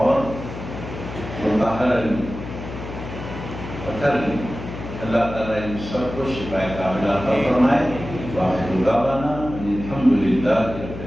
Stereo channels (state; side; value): noise; left; hum, 10 dB below the sound